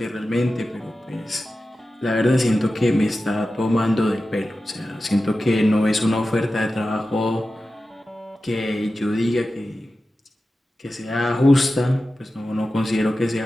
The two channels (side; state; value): both; normal; correlation 0.93